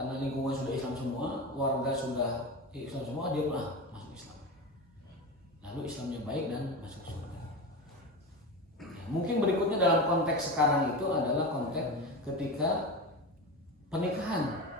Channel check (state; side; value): normal; both; correlation 0.24